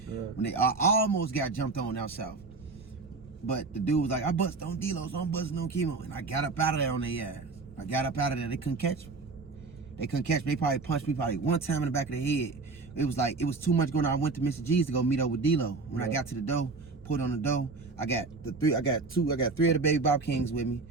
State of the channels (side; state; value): left; quieter; 3.9 dB